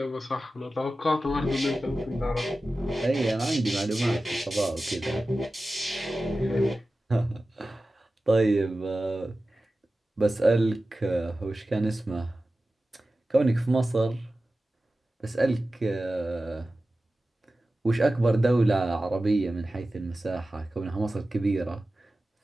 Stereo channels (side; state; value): both; normal; correlation 0.95